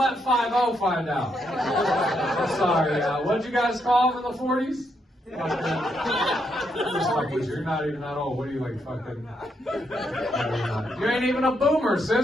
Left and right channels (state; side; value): normal; both; correlation 0.78